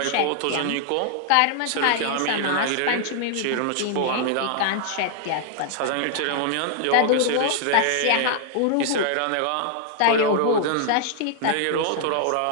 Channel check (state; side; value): different; both; correlation -0.01